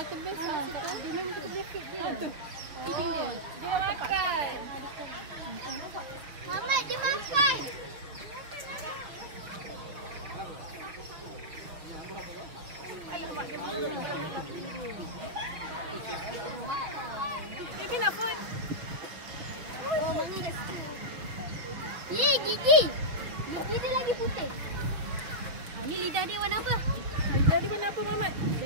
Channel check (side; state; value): left; late; 6.2 ms